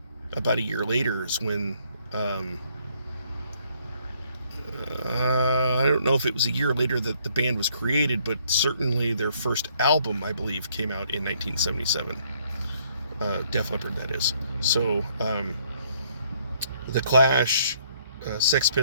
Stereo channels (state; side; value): inverted; both; correlation -0.66